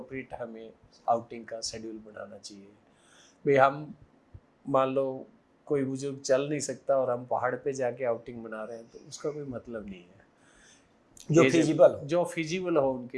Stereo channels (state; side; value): identical; both; correlation 1.00